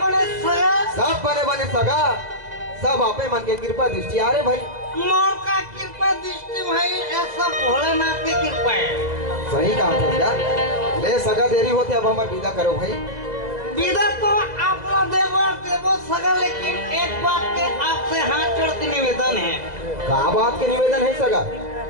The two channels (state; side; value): late; left; 2.0 ms